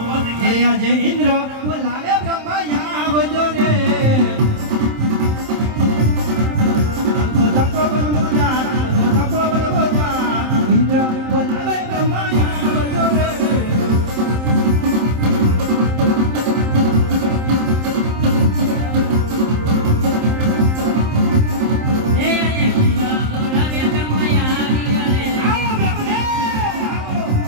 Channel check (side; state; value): left; late; 27 ms